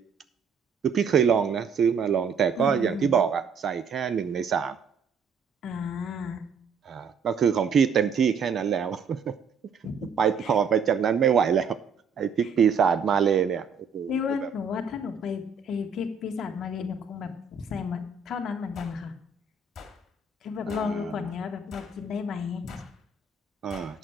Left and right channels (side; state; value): left; quieter; 5.3 dB